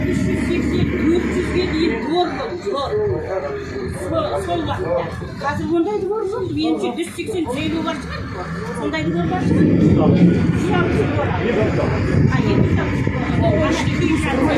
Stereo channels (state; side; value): identical; both; correlation 1.00